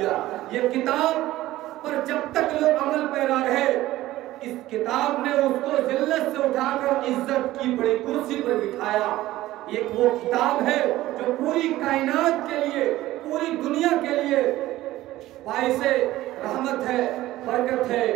یہ کتاب پر جب تک لوگ عمل پیرا رہے، اس کتاب نے اس کو ذلت سے اٹھا کر عزت کی بڑی کرسی پر بٹھایا۔ یہ وہ کتاب ہے جو پوری کائنات کے لیے، پوری دنیا کے لیے باعث رحمت ہے، برکت ہے۔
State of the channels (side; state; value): left; quieter; 16.0 dB